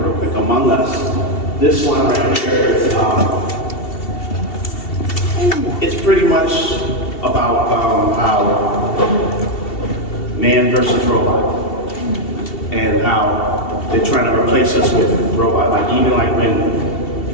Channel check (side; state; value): right; late; 2.7 ms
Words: quick. Among Us, this one right here is, it's pretty much about how man versus robot, and how they're trying to replace us with robot. Like even like when,